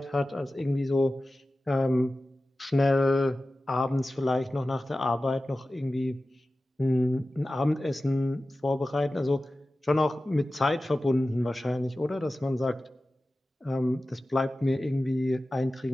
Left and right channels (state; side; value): normal; both; correlation 0.95